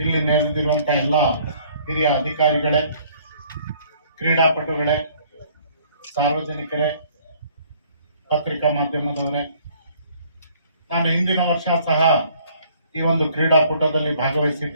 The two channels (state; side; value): inverted; both; correlation -0.59